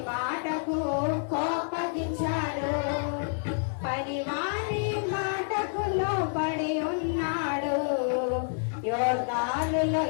మాటకు కోపగించాడు. పనివాని మాటకు లోబడి ఉన్నాడు, యోర్దానులో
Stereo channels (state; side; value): silent; right; 59 dB below the other